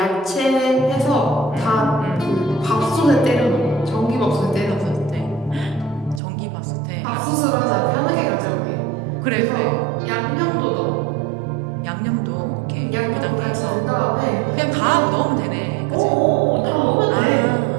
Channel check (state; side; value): drops out; left; at 6.2 s